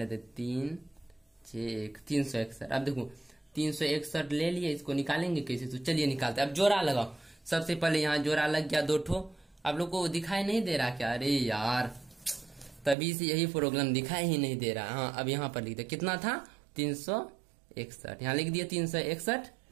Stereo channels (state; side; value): drops out; left; at 13.0 s